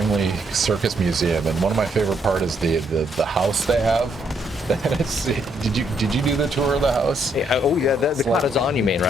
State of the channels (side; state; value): both; normal; correlation 0.73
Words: Circus Museum, and one of my favorite part is the house they have. Did you do the tour of the house? Yeah, oh yeah, the like- Katazan, you mean,